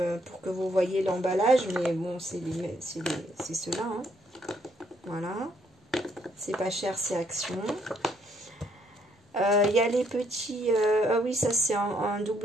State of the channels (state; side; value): normal; both; correlation 0.70